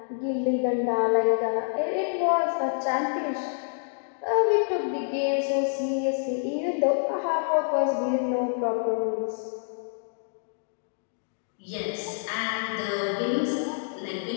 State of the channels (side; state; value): right; silent; digital silence